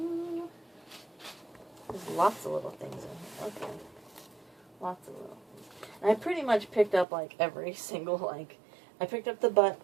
There's lots of little things in here. Okay. Lots of little things. And I pretty much picked up like every single like I picked up the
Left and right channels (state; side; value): drops out; left; at 7.1 s